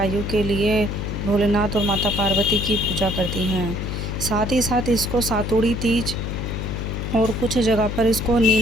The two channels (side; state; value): left; noise; hum, 4 dB below the sound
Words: के लिए भोलेनाथ और माता पार्वती की पूजा करती हैं। साथ ही साथ इसको सातुड़ी तीज और कुछ जगह पर इसको